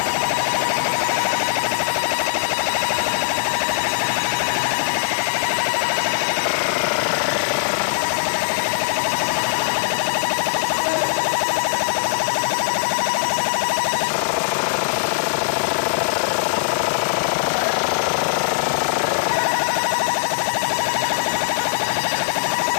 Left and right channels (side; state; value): right; silent; digital silence